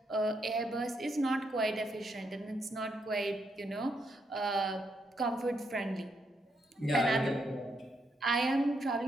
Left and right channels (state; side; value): normal; both; correlation 0.78